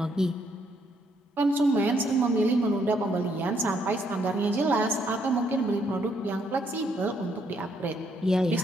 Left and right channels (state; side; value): normal; both; correlation 0.71